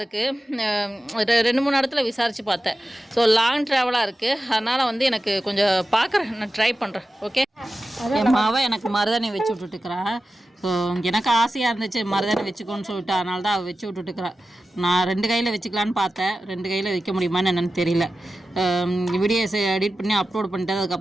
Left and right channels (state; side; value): normal; both; correlation 0.94